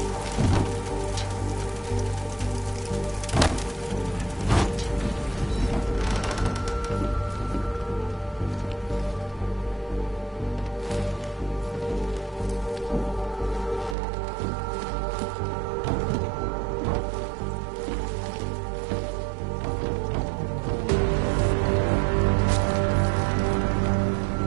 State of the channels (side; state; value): left; drops out; at 14.0 s